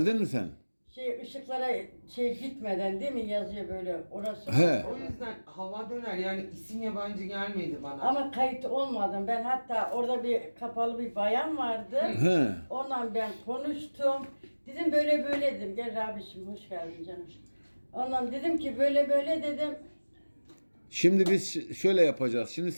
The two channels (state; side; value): inverted; both; correlation -1.00